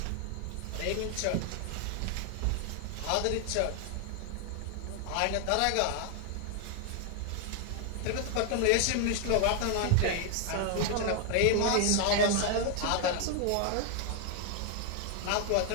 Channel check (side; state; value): both; different; correlation 0.00